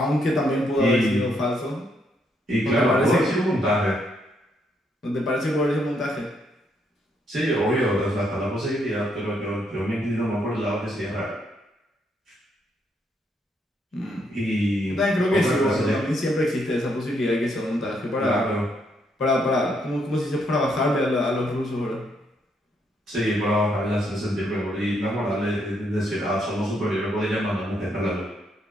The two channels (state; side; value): normal; both; correlation 0.75